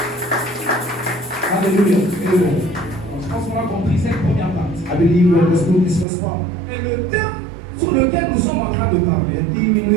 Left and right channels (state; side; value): drops out; left; at 6.1 s